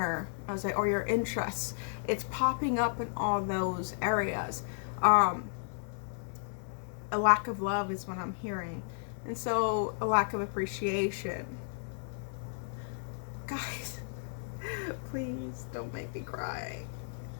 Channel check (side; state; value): right; silent; 55 dB below the other